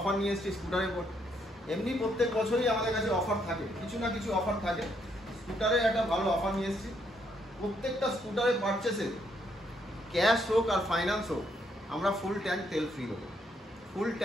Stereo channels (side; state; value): both; normal; correlation 0.73